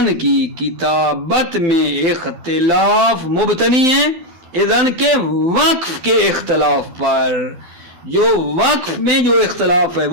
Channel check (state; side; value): late; left; 12 ms